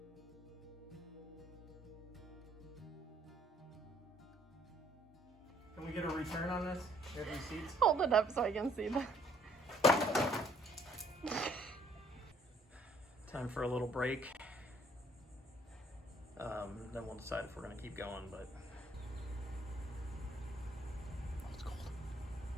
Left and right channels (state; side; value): normal; both; correlation 0.64